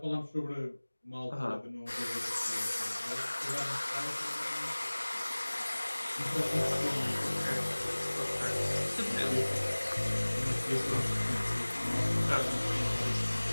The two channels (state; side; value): inverted; both; correlation -1.00